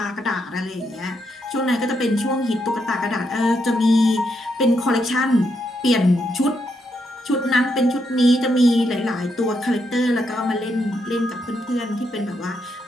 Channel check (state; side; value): normal; both; correlation 0.79